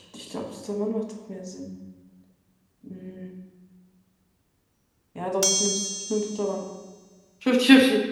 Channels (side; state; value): both; identical; correlation 1.00